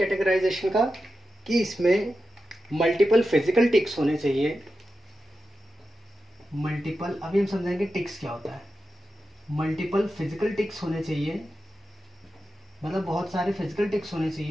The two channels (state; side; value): normal; both; correlation 0.91